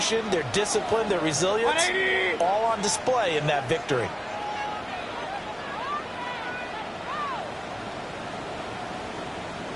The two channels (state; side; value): identical; both; correlation 1.00